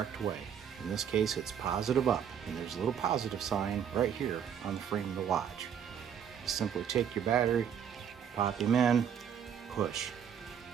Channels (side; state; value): left; quieter; 8.3 dB